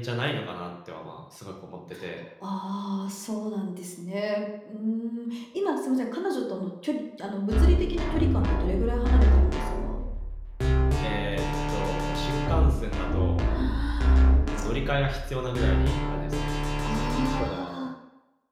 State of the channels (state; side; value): identical; both; correlation 1.00